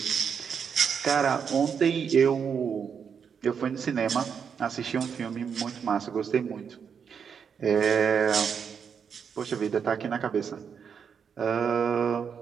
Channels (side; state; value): left; quieter; 6.9 dB